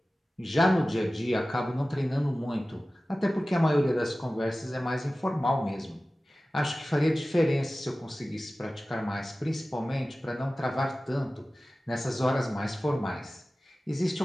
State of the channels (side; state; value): both; normal; correlation 0.96